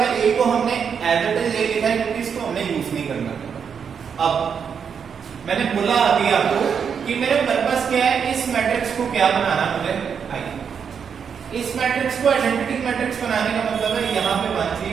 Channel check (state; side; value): quieter; left; 6.9 dB